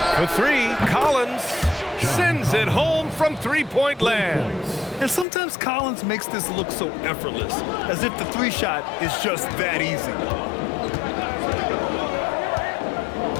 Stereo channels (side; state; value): right; drops out; at 5.2 s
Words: For 3, Collins sends it home from three-point land. And sometimes Collins makes this look so effortless, as if the 3-shot is just that easy.